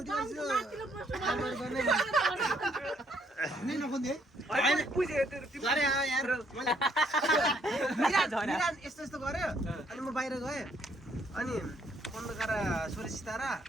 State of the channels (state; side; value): normal; both; correlation 0.69